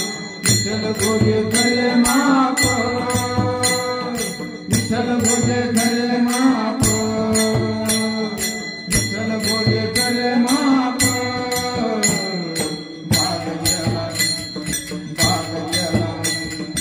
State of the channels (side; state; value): both; identical; correlation 1.00